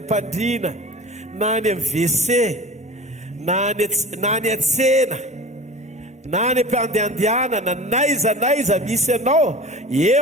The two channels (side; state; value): both; normal; correlation 0.37